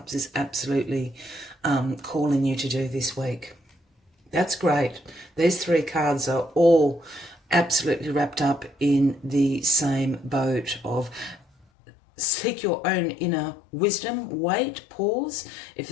is absolutely calling you to do this week. That's great. These three cards are all absolutely wrapped up in the same boat of seek your own inner wisdom, wait, pause. If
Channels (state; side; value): drops out; right; at 11.7 s